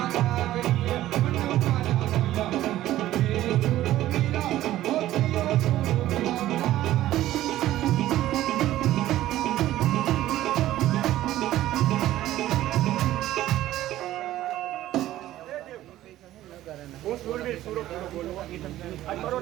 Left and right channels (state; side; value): quieter; left; 14.2 dB